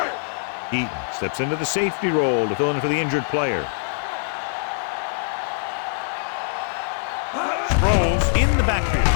Eaton steps into the safety role to fill in for the injured player. Let's go. Get me going. Sproles in the backfield.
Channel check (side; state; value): right; silent; digital silence